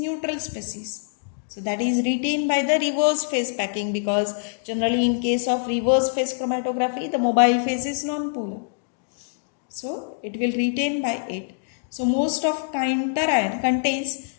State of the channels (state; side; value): silent; right; digital silence